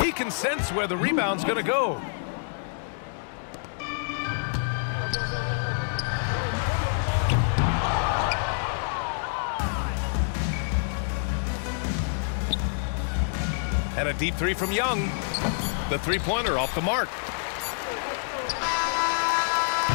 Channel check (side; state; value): right; silent; digital silence